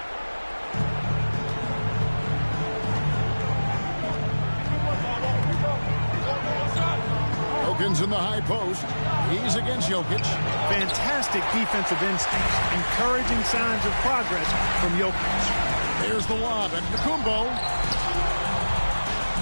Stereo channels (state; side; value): inverted; both; correlation -1.00